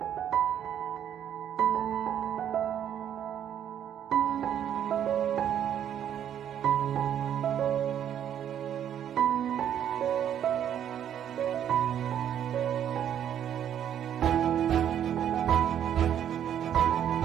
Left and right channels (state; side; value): quieter; left; 9.8 dB